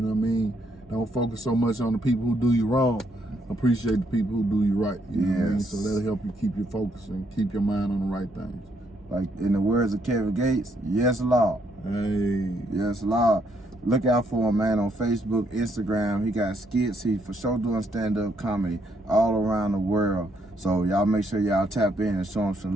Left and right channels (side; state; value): both; normal; correlation 0.73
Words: what I mean? Don't focus so much on the people who do you wrong. Appreciate the people who do you right. You know what I mean? So that'll help you keep your focus and keep your mind on the right things. Like in the words of Kevin Gates, yes, Lord. Hey. Yes, Lord. Look out for him, man, on Facebook, Instagram. He got skits. He for sure doing stand-up comedy all around the world. So y'all make sure y'all tap in and show him some